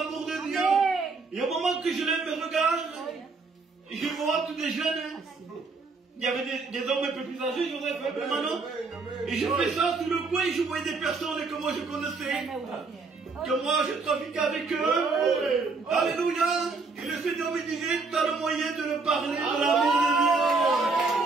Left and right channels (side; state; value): left; quieter; 4.1 dB